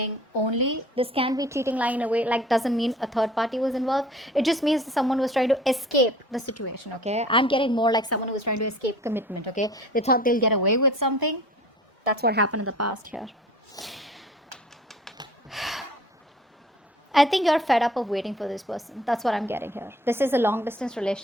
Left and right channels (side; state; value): both; normal; correlation 0.47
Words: only. This can be cheating, lying in a way, like doesn't mean a third party was involved. It just means that someone was trying to escape the situation, okay. I'm getting more like someone who was trying to escape commitment, okay. They thought they'll get away with something. That's what happened in the past here. I think you're fed up of waiting for this person. That's what I'm getting here. This is a long distance